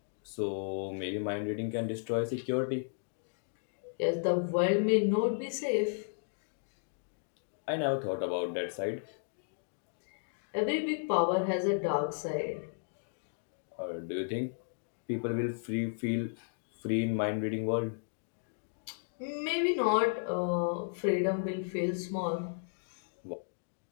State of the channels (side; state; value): right; silent; digital silence